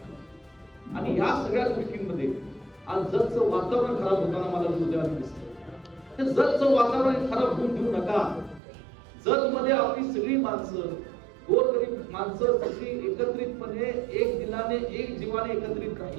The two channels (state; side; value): drops out; left; at 8.6 s